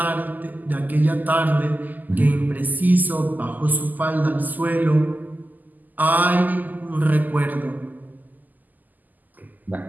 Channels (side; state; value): left; late; 0.083 ms